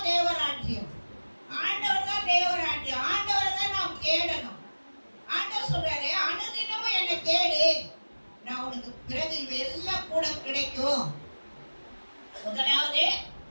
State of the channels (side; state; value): both; inverted; correlation -1.00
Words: தேவராஜ்யம். ஆண்டவர் தான் தேவராஜ்யம். ஆண்டவரை தான் நாம் தேடணும். ஆண்டவர் சொல்றாரு, அனுதினமும் என்னை தேடு, நான் உனக்கு பிறகு எல்லாம் கூட கிடைக்கும். முதலாவது